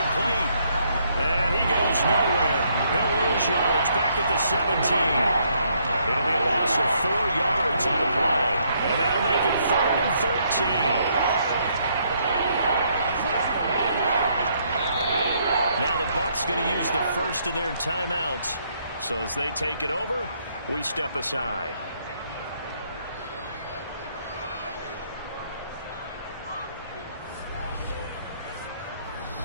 And he goes nowhere. He'll lose yardage back at the 17. It'll be a loss of 4 yards on the play. And that'll make it 3rd and 13. Now the Bucs going to use the first of their timeouts. So as they take it over, we step aside.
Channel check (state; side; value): inverted; both; correlation -0.71